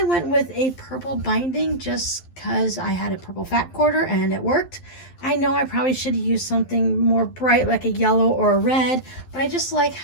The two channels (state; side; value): late; right; 11 ms